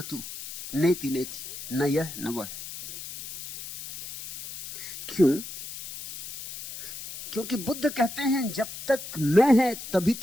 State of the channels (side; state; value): left; noise; hiss, 11 dB below the sound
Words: तू, नेति नेति, न यह न वह। क्यों? क्योंकि बुद्ध कहते हैं जब तक मैं है तभी